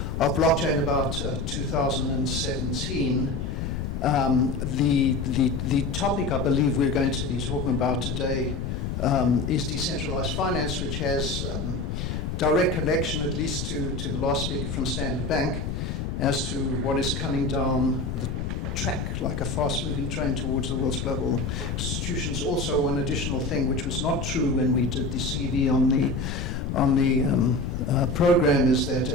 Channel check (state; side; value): noise; left; rumble, 3 dB below the sound